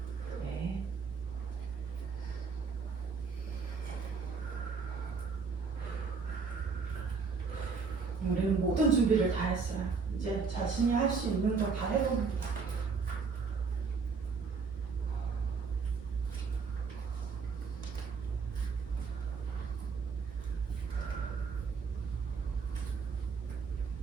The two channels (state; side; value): quieter; left; 5.1 dB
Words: 우리는 모든 준비를 다 했어요. 이제 자신이 할 수 있는 거 다 해봅니다.